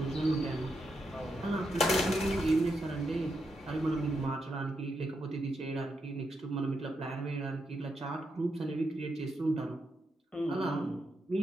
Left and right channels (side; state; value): both; normal; correlation 0.83